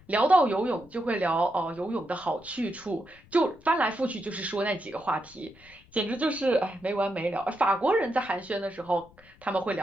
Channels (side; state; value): left; noise; rumble, 27 dB below the sound